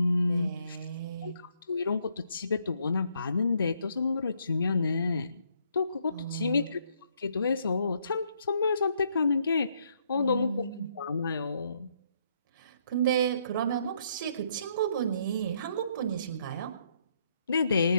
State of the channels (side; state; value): both; inverted; correlation -0.72